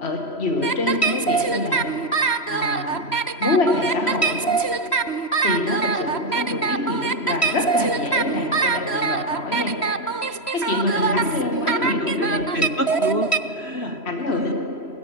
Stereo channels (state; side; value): late; right; 3.1 ms